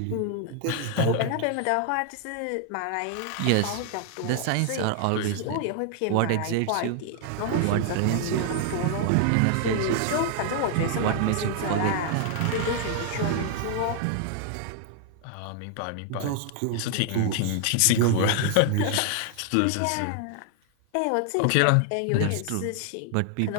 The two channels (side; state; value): both; different; correlation 0.00